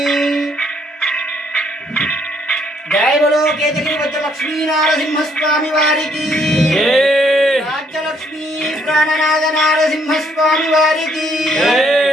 జయ బలో కేతగిరి వజ్రలక్ష్మీ నారసింహ స్వామి వారికి రాజ్యలక్ష్మీ ప్రాణనాథ నారసింహ స్వామి వారికి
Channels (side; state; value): both; normal; correlation 0.68